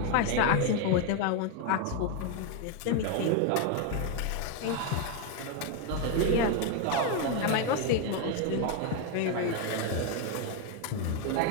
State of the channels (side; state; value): both; different; correlation 0.01